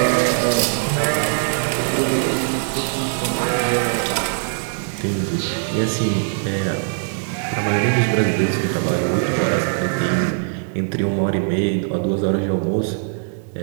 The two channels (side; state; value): left; silent; digital silence